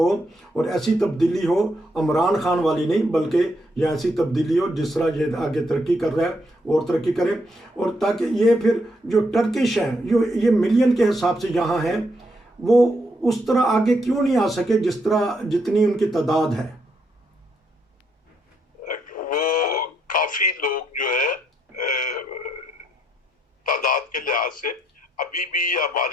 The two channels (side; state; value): both; normal; correlation 0.76